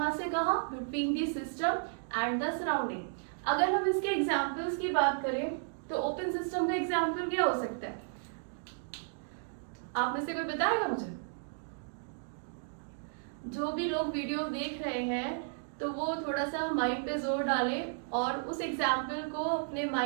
से कहां, between the system and the surrounding. अगर हम इसके एग्जांपल्स की बात करें तो ओपन सिस्टम का एग्जांपल क्या हो सकता है, आप में से कोई बताएगा मुझे? जो भी लोग वीडियो देख रहे हैं तो वो थोड़ा सा माइंड पे जोर डालें और उस एग्जाम्पल को अपने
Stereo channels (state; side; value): silent; left; digital silence